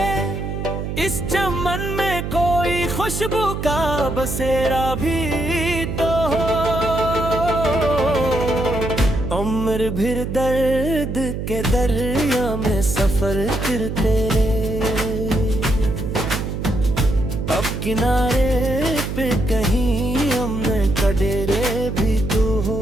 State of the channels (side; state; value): right; noise; hum, 4 dB below the sound